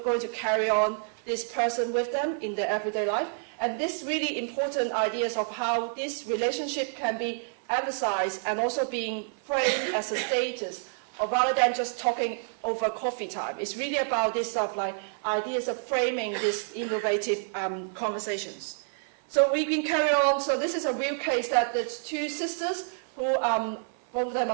to carry on this person with them in their everyday life. And this really important ideas of how this relationship can be emphasized and also being framed as a status, or rather than just talking over coffee time. It's really about this stuff like ideas of framing these innovative conversations. So we can carry on. So this is a real case that there's two sisters who both of them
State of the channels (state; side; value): silent; left; 59 dB below the other